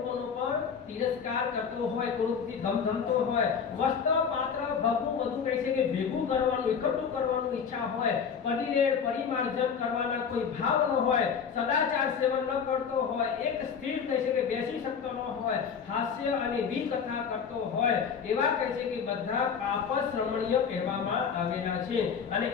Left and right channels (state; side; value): quieter; right; 6.7 dB